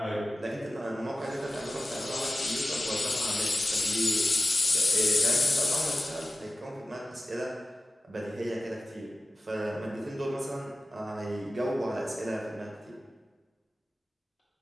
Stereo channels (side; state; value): both; normal; correlation 0.95